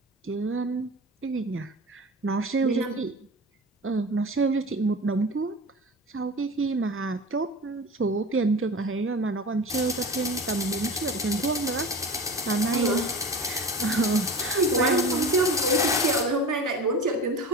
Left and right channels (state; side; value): normal; both; correlation 0.33